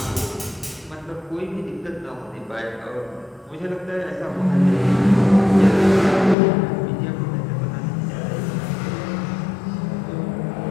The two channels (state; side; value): drops out; right; at 6.4 s